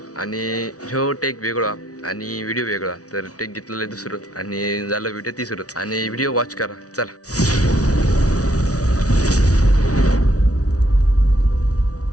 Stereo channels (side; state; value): right; late; 0.67 ms